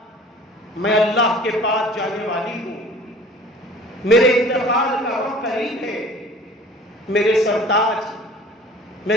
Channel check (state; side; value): normal; both; correlation 0.47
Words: میں اللہ کے پاس جانے والی ہوں، میرے انتقال کا وقت قریب ہے، میرے سرتاج